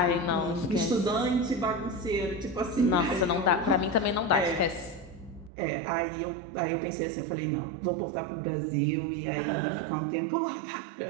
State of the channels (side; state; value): left; drops out; at 5.5 s